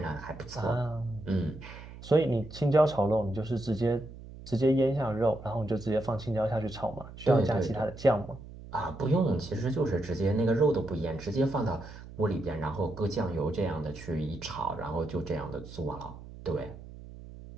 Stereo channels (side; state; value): right; noise; hum, 15 dB below the sound